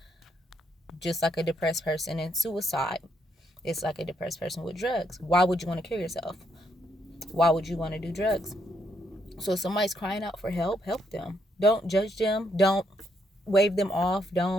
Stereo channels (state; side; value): normal; both; correlation 0.75